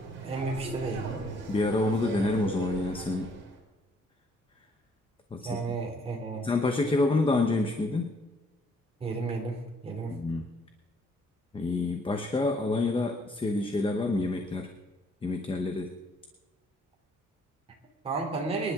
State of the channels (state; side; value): normal; both; correlation 0.65